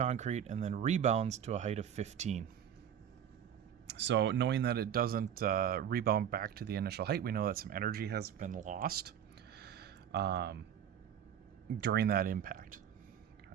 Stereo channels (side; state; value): left; quieter; 9.1 dB